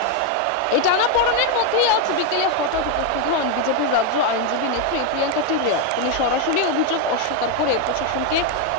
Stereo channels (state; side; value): different; both; correlation 0.02